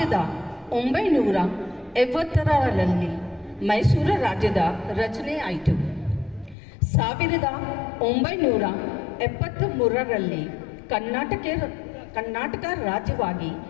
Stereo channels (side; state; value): right; drops out; at 6.6 s